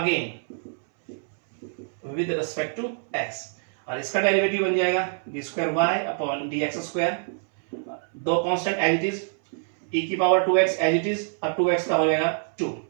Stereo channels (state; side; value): silent; left; 61 dB below the other